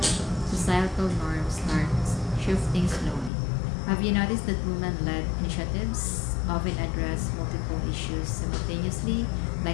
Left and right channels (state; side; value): drops out; right; at 3.3 s